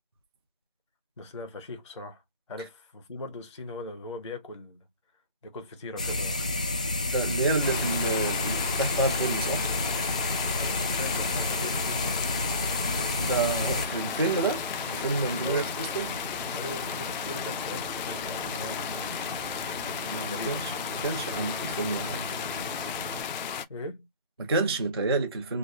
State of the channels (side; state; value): both; inverted; correlation -0.38